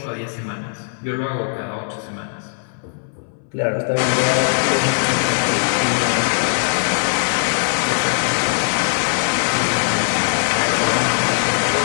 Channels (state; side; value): silent; right; 66 dB below the other